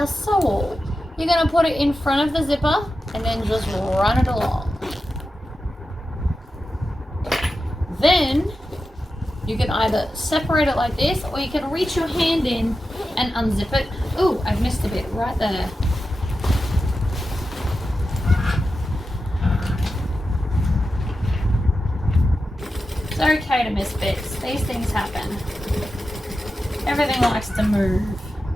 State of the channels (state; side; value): normal; both; correlation 0.91